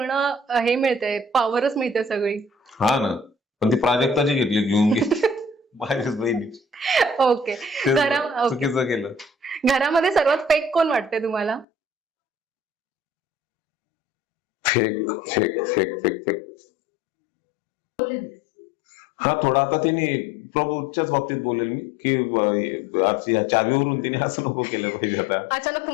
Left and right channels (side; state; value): right; drops out; at 11.7 s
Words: हे मिळतंय, पॉवरच मिळते सगळी. हा ना, पण ती प्राजक्ताची घेतली, घेऊन गेली माझ्याच बहिणीची. ओके. चुकीचं केलं. घरामध्ये सर्वात फेक कोण वाटते तुम्हाला? Fake fake fake fake fake हा, थोडा आता तिने प्रभूच्याच बाबतीत बोलेल मी की आज या चावीवरून तिने असं नको केलं पाहिजे. आता अचानक